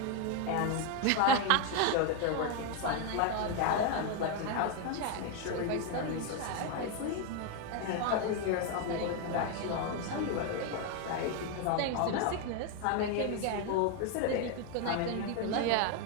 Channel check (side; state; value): both; different; correlation 0.01